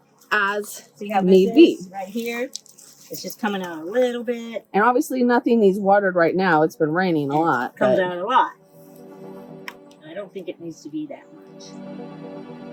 As See how need be. Right here. It's just coming out a little bit. And obviously nothing needs watered right now. It's been raining a lot. It comes out a lot. I don't think it needs to be that much.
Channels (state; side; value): identical; both; correlation 1.00